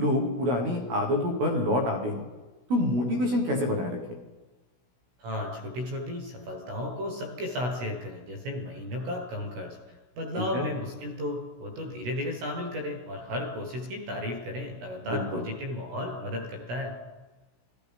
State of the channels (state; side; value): late; left; 16 ms